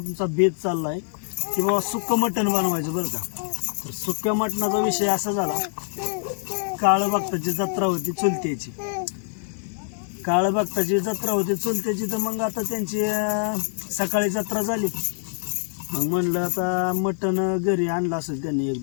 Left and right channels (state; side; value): silent; right; 62 dB below the other